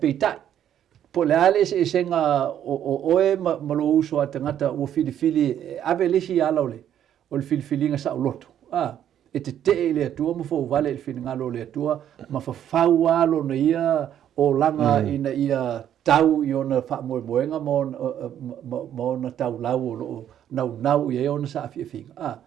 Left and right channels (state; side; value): quieter; left; 10.4 dB